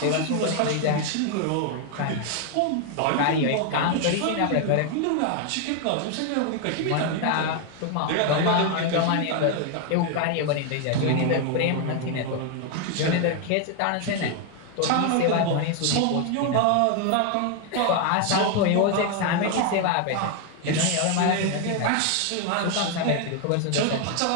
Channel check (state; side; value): different; both; correlation 0.01